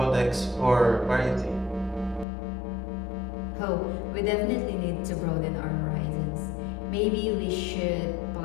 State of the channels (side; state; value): right; drops out; at 2.2 s